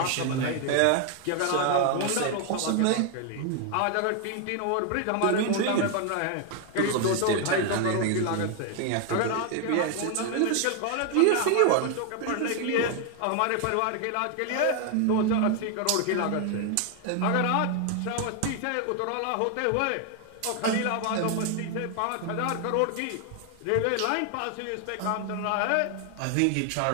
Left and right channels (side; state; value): both; different; correlation 0.01